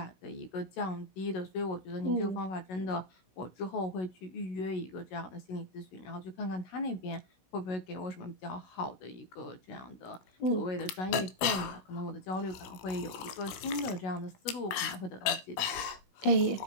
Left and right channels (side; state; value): right; late; 17 ms